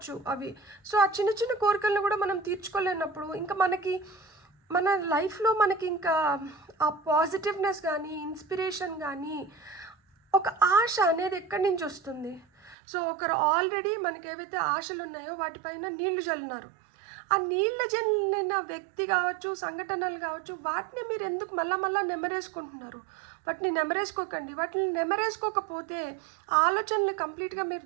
అవి. సో ఆ చిన్న చిన్న కోరికలను కూడా మనం తీర్చుకోలేనప్పుడు ఇంకా మన లైఫ్లో మనకి ఇంకా ఆ పాజిటివ్నెస్ కానీ ఇన్స్పిరేషన్ కానీ ఒక ఆశ అనేది ఎక్కడి నుంచి వస్తుంది? సో ఒకరు ఆల్రెడీ మనకి ఏవైతే ఆశలు ఉన్నాయో వాటిపైన నీళ్లు చల్లినారు. ఆ నీళ్ళ జల్లిన వ్యక్తి కావచ్చు, సంఘటనలు కావచ్చు, వాటిని మీరు ఎందుకు మళ్ళా నెమరేసుకుంటున్నారు? వాటిని నెమరేసుకోకండి. వాటిని నెమరేసుకోకపోతే ఆలోచనలు కంప్లీట్గా మీరు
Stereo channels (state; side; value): drops out; left; at 12.8 s